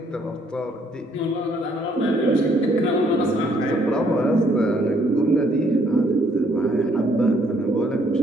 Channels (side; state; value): both; normal; correlation 0.67